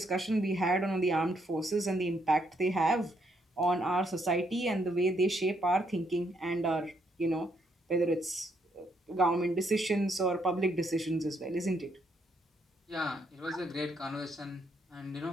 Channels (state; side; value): normal; both; correlation 0.74